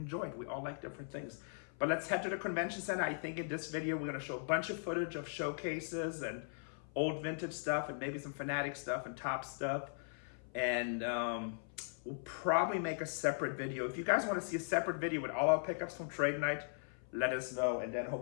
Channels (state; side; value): silent; right; 52 dB below the other